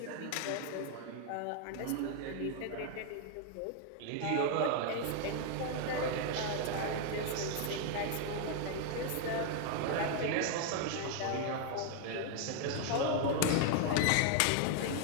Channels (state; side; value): different; both; correlation 0.00